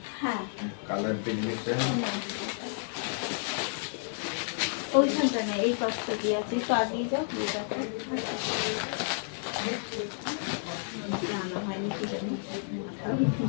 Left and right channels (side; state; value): right; silent; 57 dB below the other